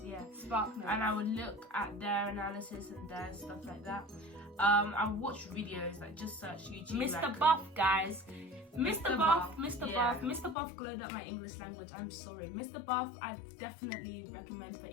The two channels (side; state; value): right; drops out; at 10.6 s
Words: yeah. Spark Notes. And I would look at their analysis and their stuff like that. I would watch videos, like just search YouTube. Mr. Buff, guys. Mr. Buff, yeah. Mr. Buff glowed up my English language. I'm sorry. Mr. Buff, I definitely recommend for